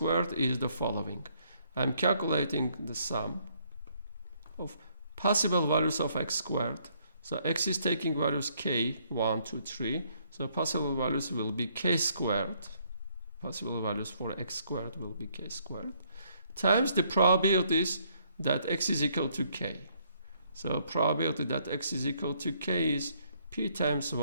is the following. I'm calculating the sum of possible values of x squared. So x is taking values k, 1, 2, 3. So possible values will be k squared. Possible values for x squared will be k squared. Times the probabilities that x is equal to k. So probability that x is equal to k is p times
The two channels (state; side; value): inverted; both; correlation -0.69